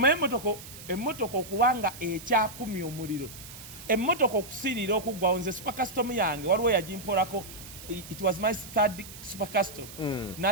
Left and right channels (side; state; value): right; noise; hiss, 15 dB below the sound